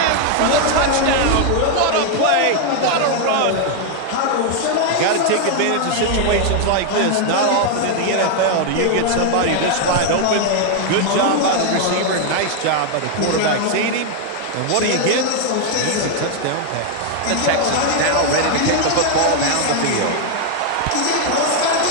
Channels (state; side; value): different; both; correlation 0.00